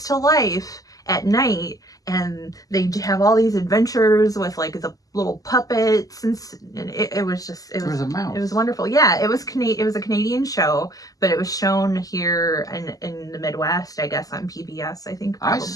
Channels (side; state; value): right; late; 0.17 ms